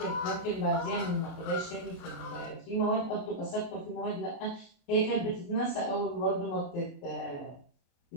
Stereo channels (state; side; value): late; right; 29 ms